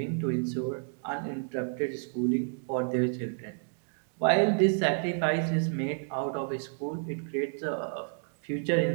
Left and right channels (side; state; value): left; silent; digital silence